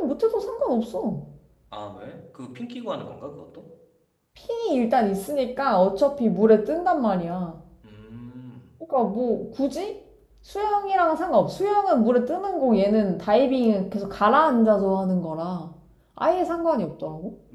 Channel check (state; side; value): identical; both; correlation 1.00